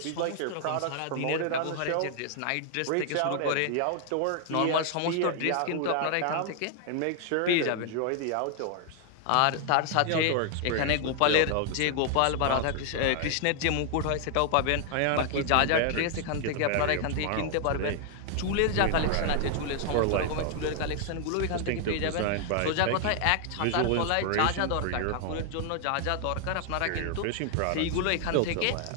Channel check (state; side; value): different; both; correlation 0.00